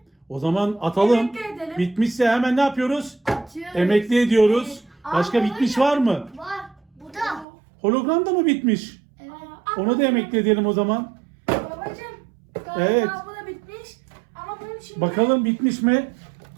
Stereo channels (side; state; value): left; drops out; at 7.5 s